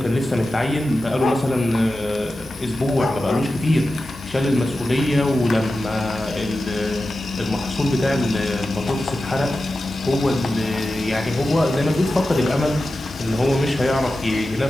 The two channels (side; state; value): right; noise; hiss, 27 dB below the sound